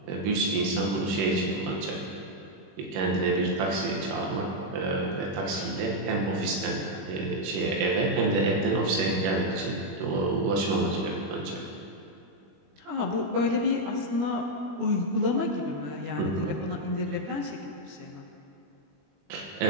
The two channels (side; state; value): left; late; 21 ms